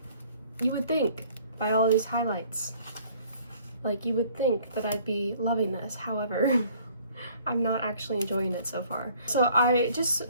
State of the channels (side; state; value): both; inverted; correlation -0.57